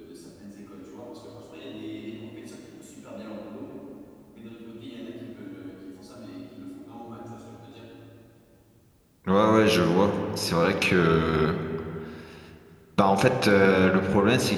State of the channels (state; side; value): identical; both; correlation 1.00